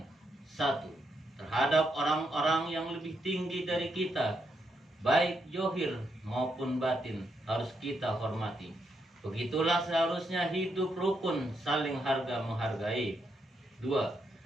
1. Terhadap orang-orang yang lebih tinggi dari kita, baik zahir maupun batin, harus kita hormati. Begitulah seharusnya hidup rukun, saling harga menghargai. 2.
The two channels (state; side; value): normal; both; correlation 0.80